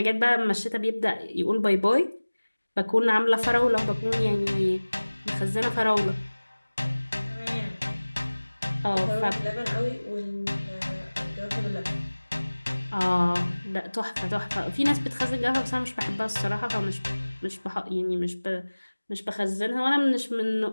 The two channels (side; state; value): both; inverted; correlation -1.00